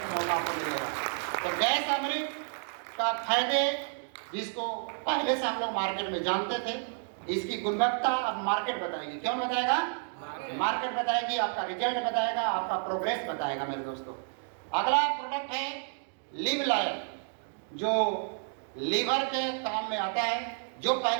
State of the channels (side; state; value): left; silent; 57 dB below the other